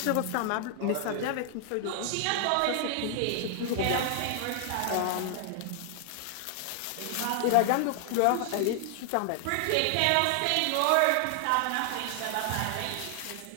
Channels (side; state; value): both; different; correlation 0.00